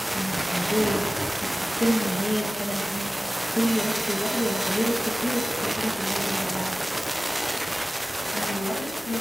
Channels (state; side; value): normal; both; correlation 0.97